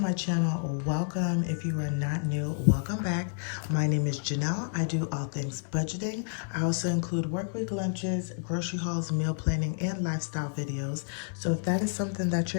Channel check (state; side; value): silent; right; 58 dB below the other